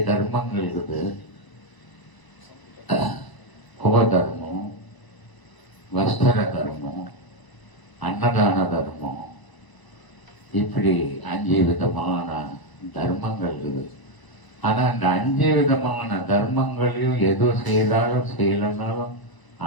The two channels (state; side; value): late; right; 1.0 ms